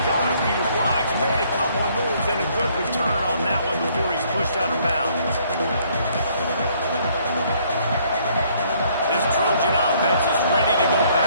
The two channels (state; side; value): inverted; both; correlation -0.65